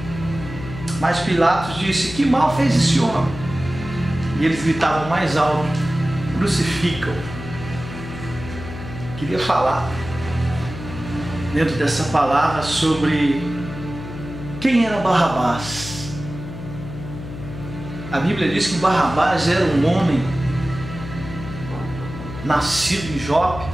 Mas Pilatos disse: Que mal fez esse homem? E eles gritavam mais alto: Crucificam! Queria falar dentro dessa palavra sobre quem era Barrabás. A Bíblia diz que Barrabás era um homem nascido em Jope,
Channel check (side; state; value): left; noise; hum, 10 dB below the sound